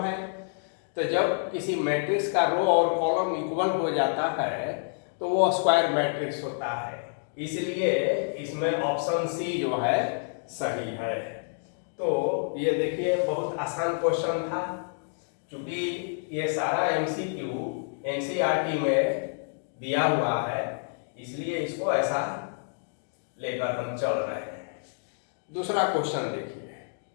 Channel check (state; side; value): silent; right; digital silence